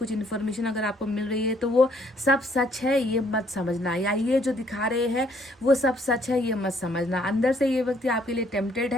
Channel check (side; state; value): both; normal; correlation 0.66